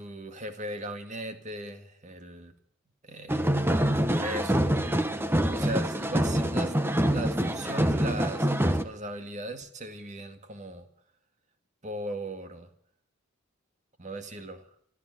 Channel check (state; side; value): normal; both; correlation 0.82